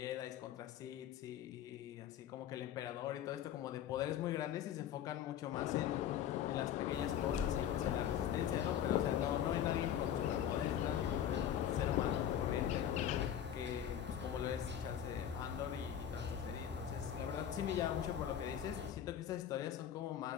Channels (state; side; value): quieter; right; 10.0 dB